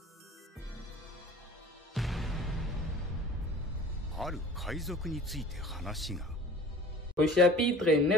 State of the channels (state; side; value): normal; both; correlation 0.45